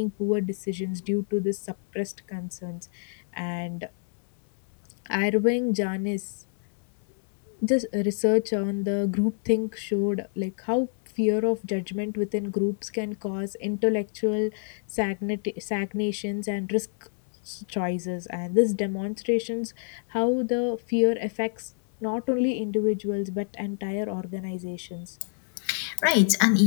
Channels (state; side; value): silent; right; 60 dB below the other